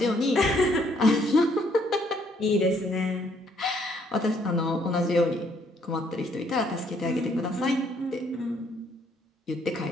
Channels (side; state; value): both; normal; correlation 0.67